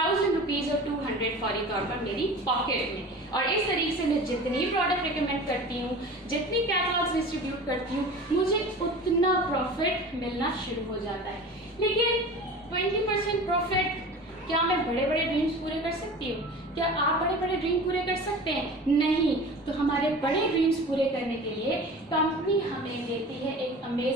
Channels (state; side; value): normal; both; correlation 0.37